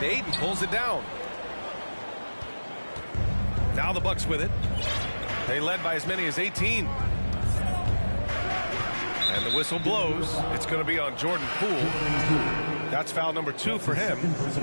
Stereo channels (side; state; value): both; inverted; correlation -1.00